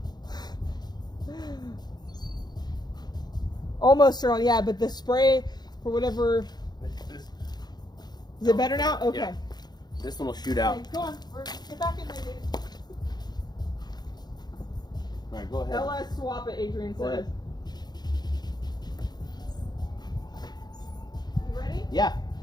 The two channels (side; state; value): right; late; 0.20 ms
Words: Almost turned on, yeah, but the spray, for whatever... Is it better now? Okay. Yeah. This one will shoot out. Okay, go on. Get back in there, dude. All right, go ahead. LS swap it, Adrian Go says. ahead. You ready? Yeah.